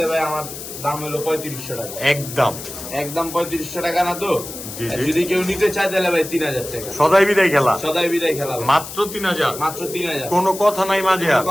ভাই আমার দাম হলো 3500 টাকা। একদম একদম 3500 টাকা না তো? জি, আর জি। যদি কেউ নিতে চায় তাহলে ভাই 3000 টাকা। সদাই বিদায় খেলা সদাই বিদায় খেলা ভাই। মাত্র 3000। মাত্র 3000। কোনো কথা নাই মাঝে আর। কোনো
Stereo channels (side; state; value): left; noise; hiss, 11 dB below the sound